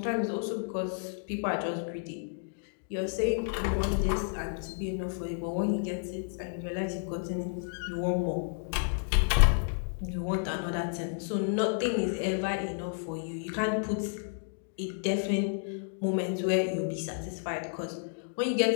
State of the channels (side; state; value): right; silent; digital silence